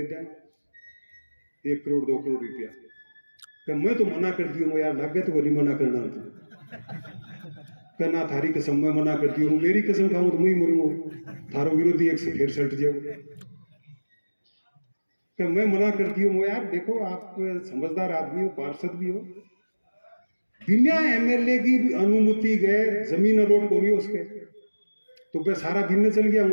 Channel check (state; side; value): inverted; both; correlation -1.00